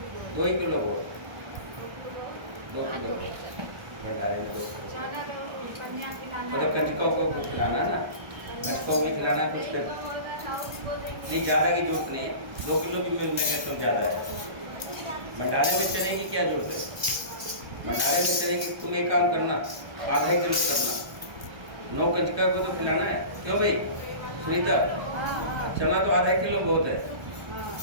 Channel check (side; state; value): left; late; 1.2 ms